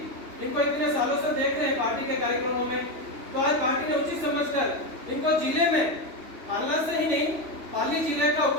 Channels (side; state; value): left; late; 3.1 ms